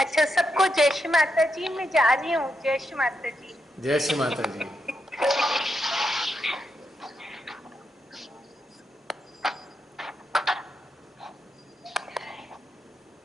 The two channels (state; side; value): normal; both; correlation 0.83